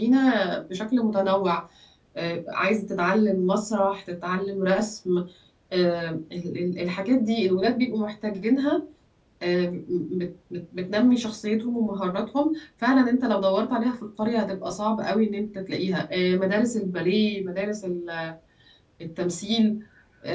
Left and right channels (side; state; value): both; identical; correlation 1.00